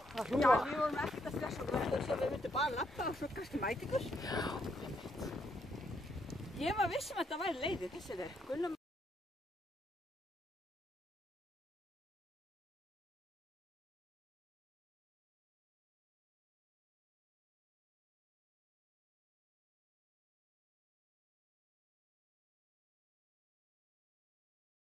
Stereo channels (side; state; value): both; normal; correlation 0.75